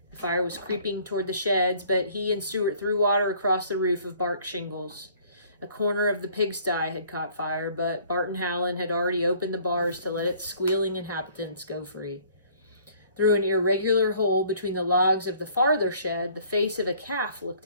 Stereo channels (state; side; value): inverted; both; correlation -0.56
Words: The fire was creeping toward the sheds, but he and Stuart threw water across the roof of bark shingles. A corner of the pigsty had caught fire, but Barton Howland had already opened the bars to let its squealing inhabitants go free. Through an irregular hole between the logs of the farther shed, the face of a calf